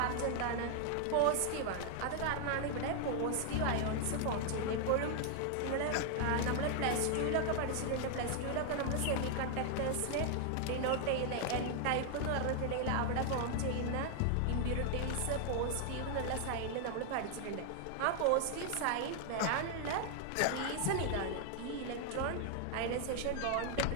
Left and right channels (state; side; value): different; both; correlation 0.00